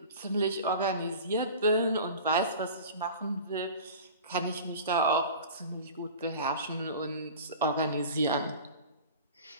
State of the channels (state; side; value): inverted; both; correlation -0.38